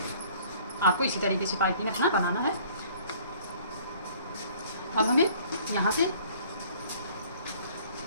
आपको इसी तरीके से पाइपिंग अपना बनाना है। अब हमें यहाँ से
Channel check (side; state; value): both; inverted; correlation -0.54